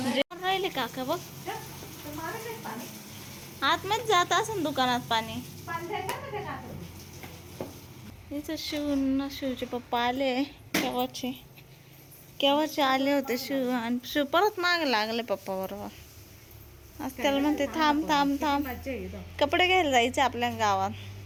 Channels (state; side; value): identical; both; correlation 1.00